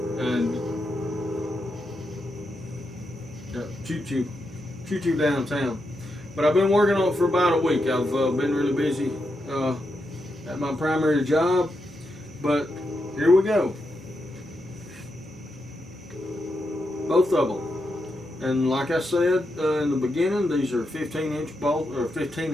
and choo-choo downtown. But I've been working on it for about a week. I've been really busy at my primary job, but here we go. Both of them. And like I said in the beginning, these are 15-inch bolts, or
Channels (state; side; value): normal; both; correlation 0.84